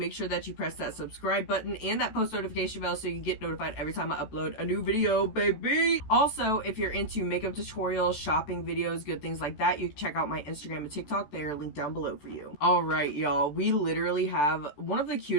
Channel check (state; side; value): late; right; 14 ms